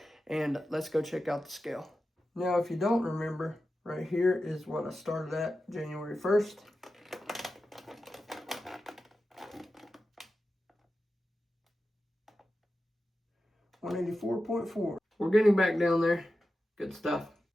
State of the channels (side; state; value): both; normal; correlation 0.92